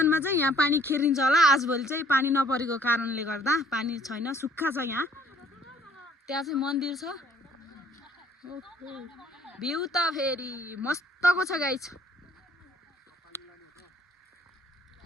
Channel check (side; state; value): both; normal; correlation 0.59